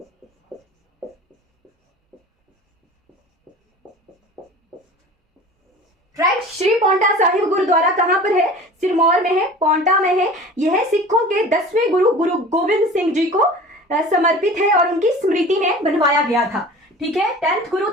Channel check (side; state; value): both; normal; correlation 0.40